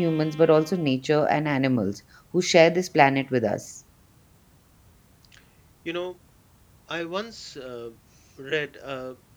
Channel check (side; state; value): both; identical; correlation 1.00